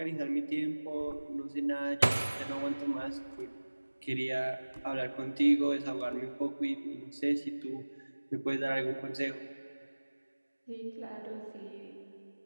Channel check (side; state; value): both; inverted; correlation -1.00